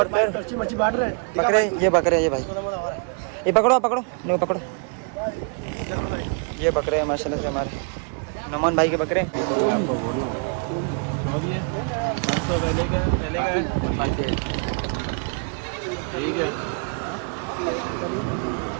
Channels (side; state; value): left; quieter; 38.2 dB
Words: फिर अच्छी मच्छी बांट रहे हैं बकरे। ये बकरे ये भाई ये पकड़ो पकड़ो नहीं पकड़ो। ये बकरे हैं माशाल्लाह से हमारे नमन भाई के बकरे। ठीक है